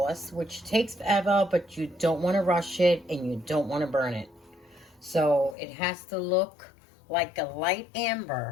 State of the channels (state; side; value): drops out; right; at 5.6 s